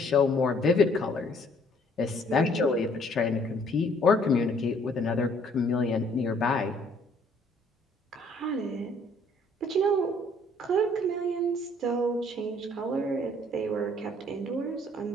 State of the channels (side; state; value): both; normal; correlation 0.61